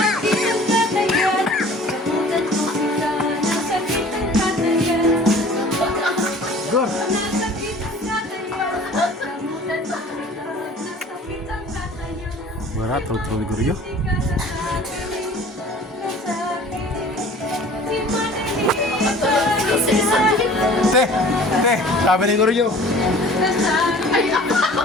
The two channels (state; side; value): normal; both; correlation 0.47